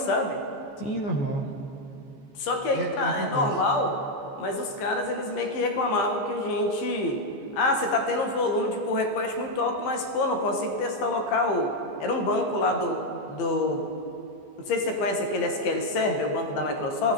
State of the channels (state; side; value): late; right; 14 ms